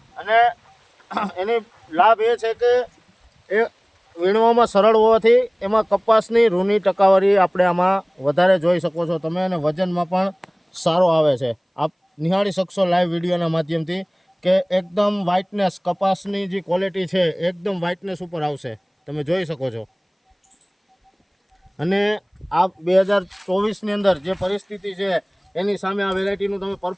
અને એની લાભ એ છે કે એ વીણવામાં સરળ હોવાથી એમાં કપાસની રૂની ટકાવારી આપણે આમાં વધારે જોઈ શકો છો તમે, અને વજનમાં પણ સારો આવે છે. આપ નિહાળી શકશો લાઈવ વિડીયોના માધ્યમથી કે એકદમ વ્હાઇટનેસ, કપાસની જે ક્વોલિટી છે એકદમ વ્હાઇટનેસ ઉપર આવશે, તમે જોઈ શકો છો. અને આ 2024ની અંદર જે પરિસ્થિતિ છે એની સામે આ વેરાયટીનું તમે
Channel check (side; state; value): both; identical; correlation 1.00